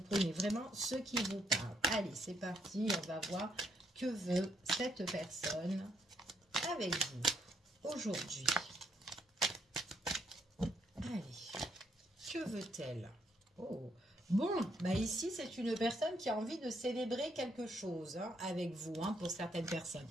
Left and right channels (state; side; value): normal; both; correlation 0.73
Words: prenez vraiment ce qui vous parle. Allez, c'est parti, on va voir que veut cette personne avec vous aujourd'hui. Allez, que veut-elle? Oh, bon, bah ici, c'est une personne qui a envie de célébrer quelque chose avec vous, pour certaines personnes.